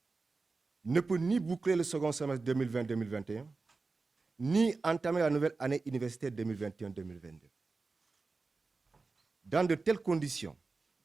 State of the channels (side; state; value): left; quieter; 3.9 dB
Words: ne peut ni boucler le second semestre 2020-2021, ni entamer la nouvelle année universitaire 2021-2022. Dans de telles conditions,